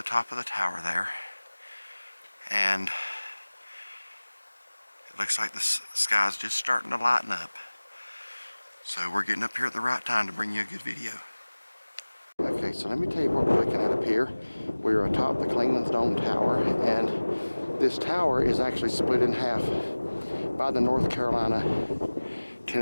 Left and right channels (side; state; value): both; inverted; correlation -1.00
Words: top of the tower there, and it looks like the sky's just starting to lighten up, so we're getting up here at the right time to bring you a good video. Okay, so let me tell you what we're looking at up here. We're atop the Clingmans Dome tower, and this tower is actually split in half by the North